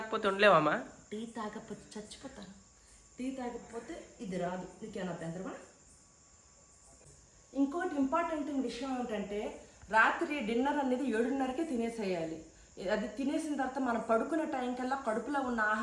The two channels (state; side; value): identical; both; correlation 1.00